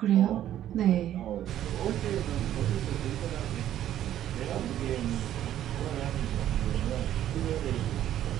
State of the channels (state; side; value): quieter; left; 11.8 dB